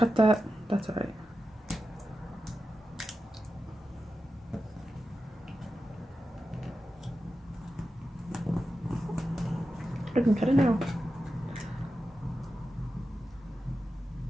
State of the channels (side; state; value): both; normal; correlation 0.91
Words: that. That's all right. I can cut it now.